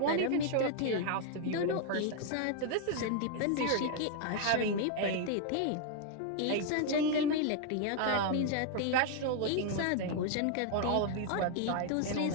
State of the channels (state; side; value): different; both; correlation 0.00